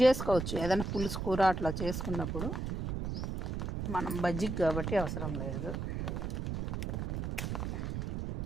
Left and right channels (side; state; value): right; noise; rumble, 3 dB below the sound